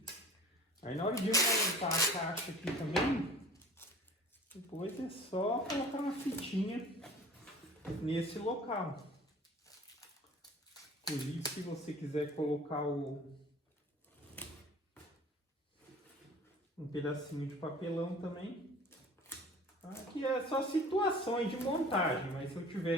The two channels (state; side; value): normal; both; correlation 0.44